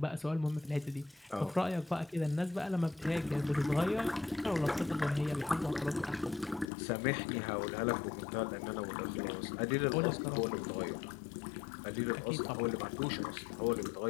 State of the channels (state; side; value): drops out; right; at 6.7 s